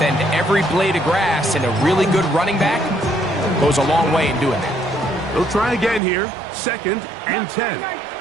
every blade of grass, and a really good running back goes a long way in doing that. They'll try again here, second and 10.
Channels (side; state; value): left; drops out; at 6.0 s